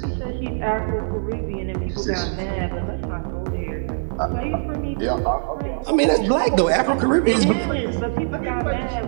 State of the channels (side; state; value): left; silent; digital silence